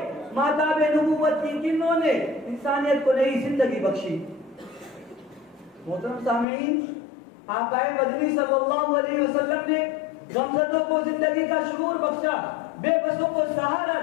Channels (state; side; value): drops out; right; at 6.5 s